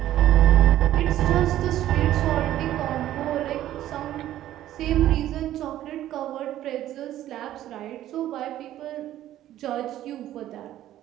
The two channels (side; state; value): left; quieter; 13.0 dB